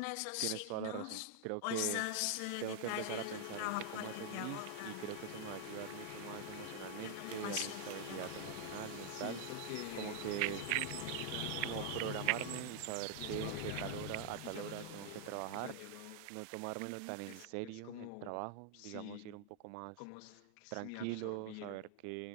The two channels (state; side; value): different; both; correlation 0.00